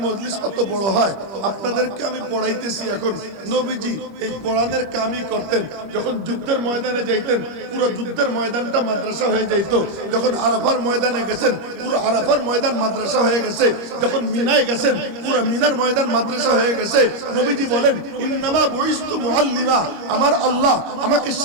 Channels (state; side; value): late; left; 25 ms